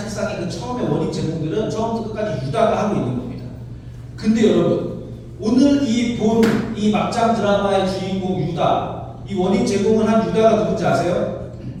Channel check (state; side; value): identical; both; correlation 1.00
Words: 그 처음의 원인 제공들은 처음부터 끝까지 유다가 하고 있는 겁니다. 근데 여러분, 오늘 이 막장 드라마의 주인공 유다, 이 원인 제공을 한 유다가 누군지 아세요?